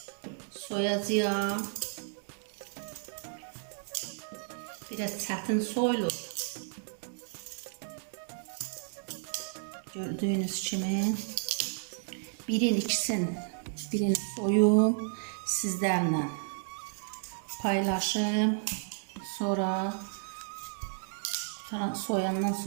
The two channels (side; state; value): left; silent; 56 dB below the other